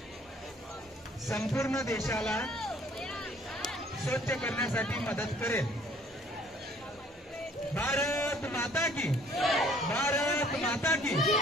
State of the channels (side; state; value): both; normal; correlation 0.58